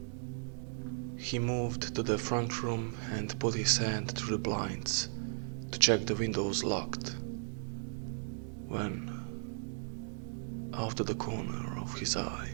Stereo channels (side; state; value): left; silent; digital silence